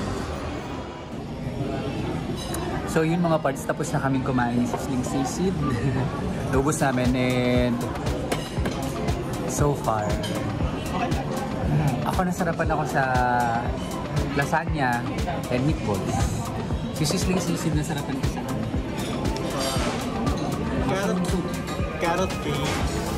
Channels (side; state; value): both; identical; correlation 1.00